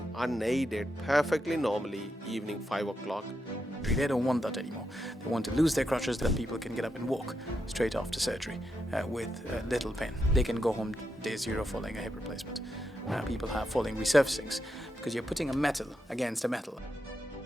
unaided perfectly normally evening 5 o'clock. They don't want that anymore. They want to lose their crutches that people can get up and walk straight after surgery with little pain. They can go home day zero following a hip replacement. People have following resurfacings because you're putting a metal against a metal.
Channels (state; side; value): normal; both; correlation 0.84